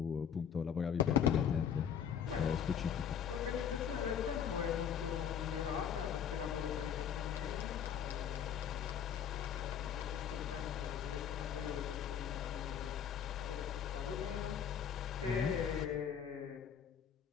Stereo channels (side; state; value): right; quieter; 8.3 dB